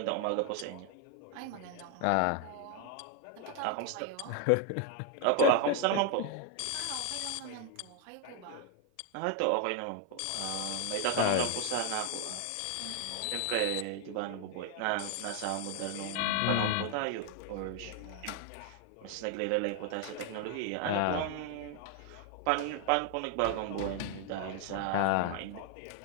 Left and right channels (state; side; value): different; both; correlation 0.00